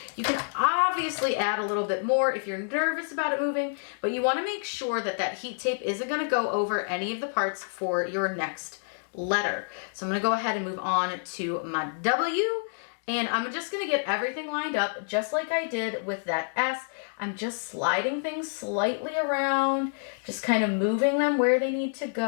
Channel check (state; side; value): silent; right; digital silence